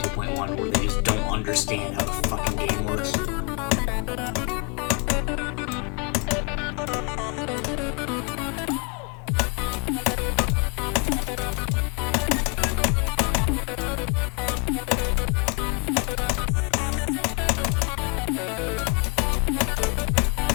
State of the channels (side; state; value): right; quieter; 31.4 dB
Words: where they just don't understand how the fucking game works.